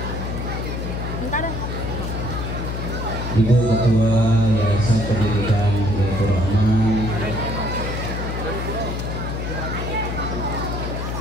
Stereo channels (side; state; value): left; noise; hum, 4 dB below the sound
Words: Ibu Ketua Yayasan Pendidikan Hidayatul Rahman,